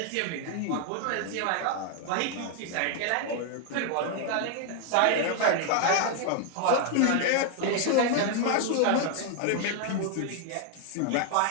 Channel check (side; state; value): both; different; correlation 0.00